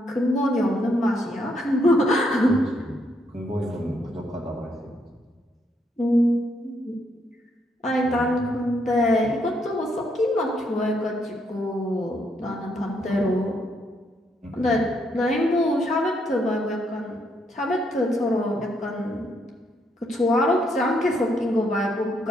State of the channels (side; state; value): both; normal; correlation 0.74